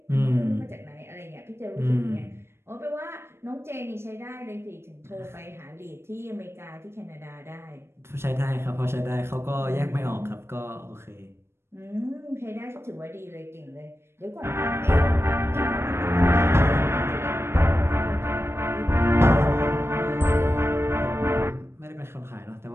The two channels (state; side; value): late; left; 0.12 ms